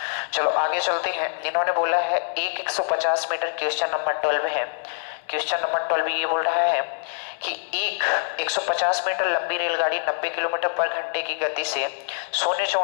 चलो आगे चलते हैं। इन्होंने बोला है एक 150 मीटर, क्वेश्चन नंबर 12 है। क्वेश्चन नंबर 12 ये बोल रहा है कि एक 150 मीटर लंबी रेलगाड़ी 90 किलोमीटर पर घंटे की गति से शून्य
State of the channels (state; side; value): silent; right; 62 dB below the other